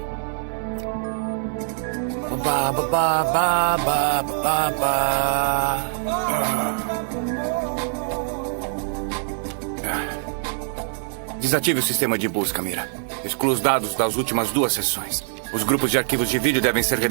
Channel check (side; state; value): left; silent; 63 dB below the other